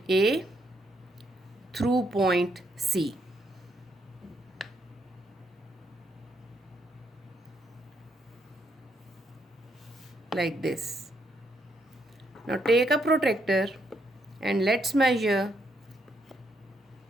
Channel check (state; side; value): normal; both; correlation 0.75